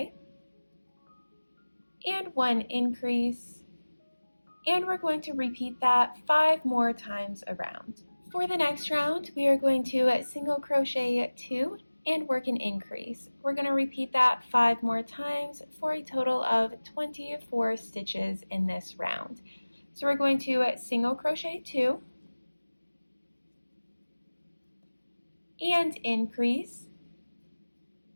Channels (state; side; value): inverted; both; correlation -1.00